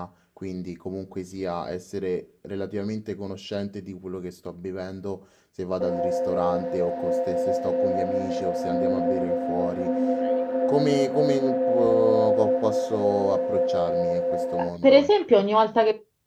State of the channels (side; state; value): both; identical; correlation 1.00